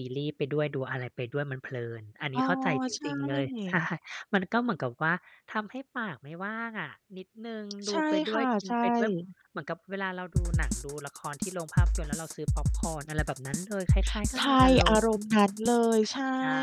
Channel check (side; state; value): both; identical; correlation 1.00